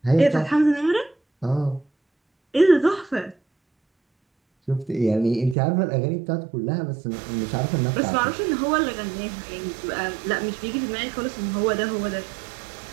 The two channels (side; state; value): left; drops out; at 5.6 s